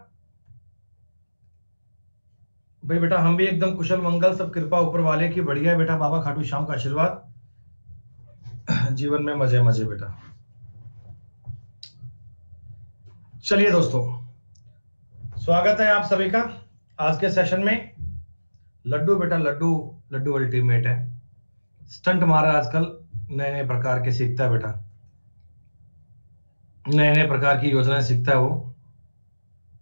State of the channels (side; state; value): both; inverted; correlation -1.00